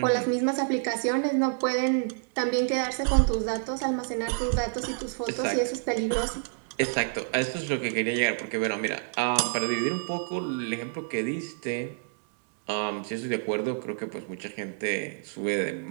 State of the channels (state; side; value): silent; left; 59 dB below the other